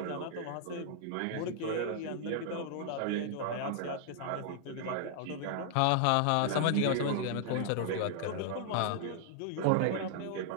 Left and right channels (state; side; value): different; both; correlation -0.01